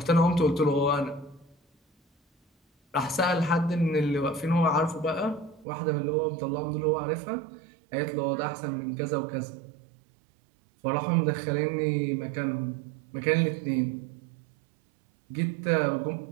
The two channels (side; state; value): left; drops out; at 5.7 s